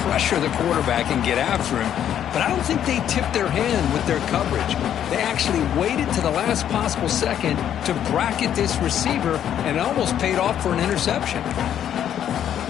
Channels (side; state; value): right; quieter; 10.0 dB